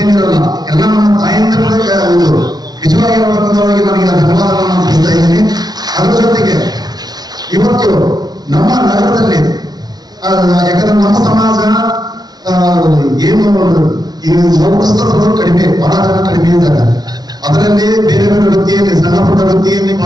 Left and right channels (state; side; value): late; left; 0.19 ms